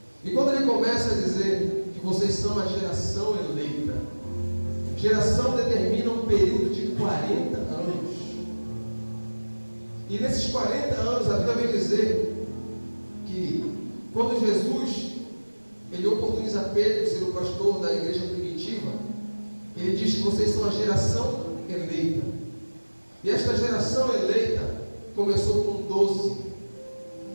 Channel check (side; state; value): both; inverted; correlation -1.00